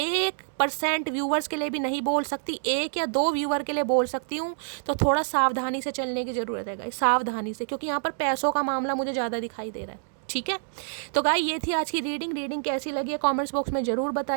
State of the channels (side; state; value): left; silent; digital silence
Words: व्यूवर्स के लिए भी नहीं बोल सकती, 1 या 2 व्यूवर के लिए बोल सकती हूँ, तो थोड़ा सावधानी से चलने की ज़रूरत है गाइस, सावधानी से, क्योंकि यहाँ पर पैसों का मामला मुझे ज़्यादा दिखाई दे रहा है, ठीक है? तो गाइस ये थी आज की रीडिंग कैसी लगी है कमेंट्स बॉक्स में ज़रूर